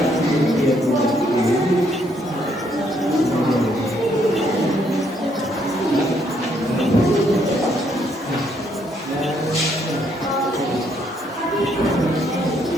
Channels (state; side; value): normal; both; correlation 0.71